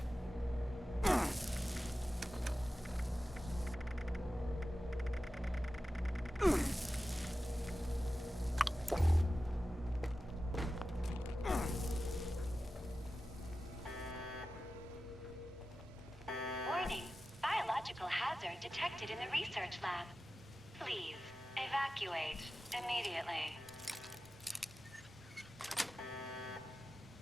Warning. Biological hazard detected in the research lab. Please, evacuate immediately.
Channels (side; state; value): both; normal; correlation 0.94